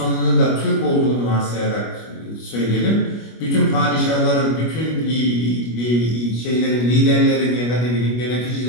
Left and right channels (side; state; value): right; late; 25 ms